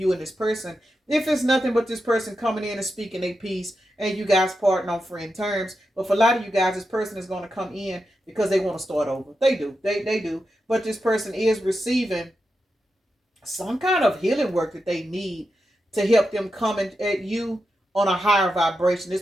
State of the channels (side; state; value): both; normal; correlation 0.88